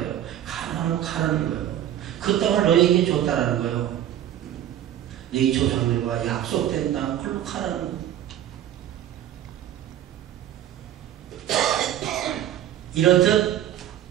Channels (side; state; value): left; quieter; 11.6 dB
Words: 가라는 거예요. 그 땅을 너희에게 줬다라는 거예요. 너희 조상들과 약속된 땅 그걸로 가라는 거예요. 이렇듯